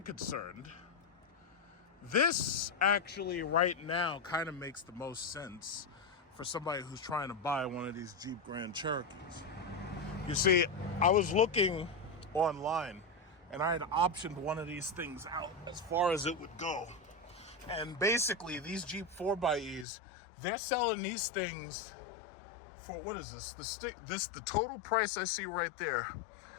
concerned, this actually right now kind of makes the most sense for somebody who's trying to buy one of these Jeep Grand Cherokees. You see, I was looking online and I had optioned one of these things out as far as it would go. And basically, these Jeep 4xEs, they're selling these things for, what is this? The total price I see right there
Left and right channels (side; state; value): right; drops out; at 19.9 s